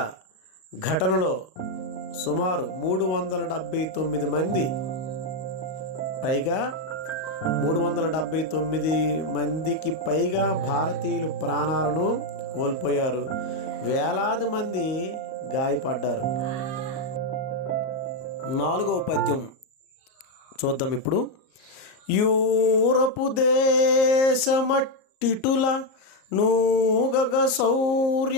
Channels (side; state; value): right; late; 38 ms